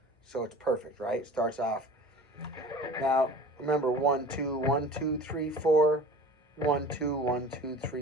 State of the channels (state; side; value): normal; both; correlation 0.41